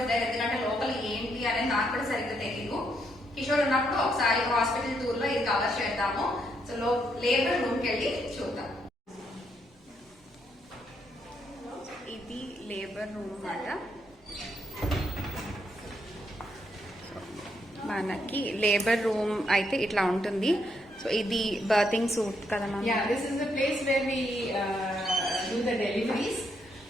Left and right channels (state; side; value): normal; both; correlation 0.76